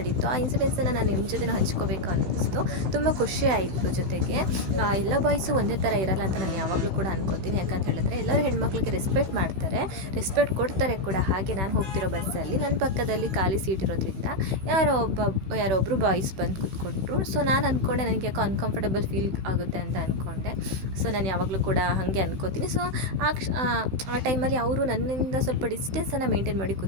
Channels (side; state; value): left; late; 16 ms